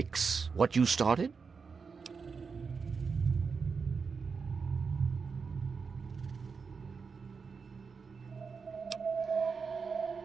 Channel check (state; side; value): quieter; left; 5.3 dB